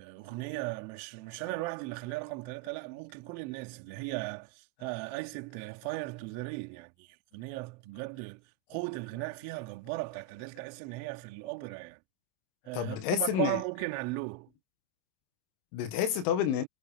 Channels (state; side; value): late; right; 27 ms